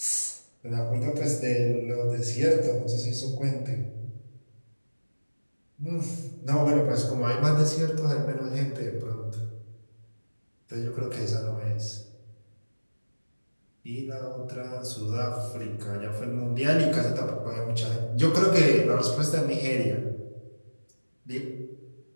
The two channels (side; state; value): both; inverted; correlation -1.00